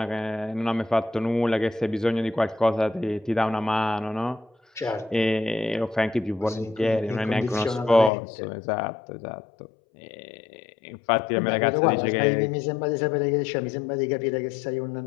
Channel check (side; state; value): right; drops out; at 8.1 s